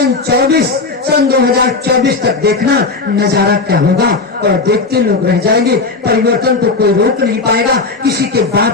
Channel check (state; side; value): quieter; right; 3.9 dB